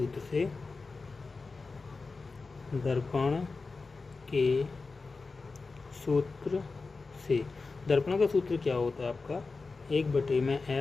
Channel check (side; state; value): right; quieter; 4.0 dB